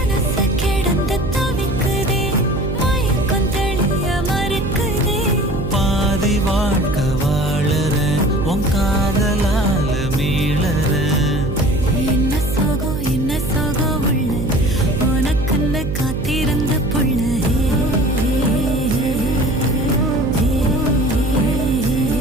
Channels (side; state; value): right; noise; hum, 4 dB below the sound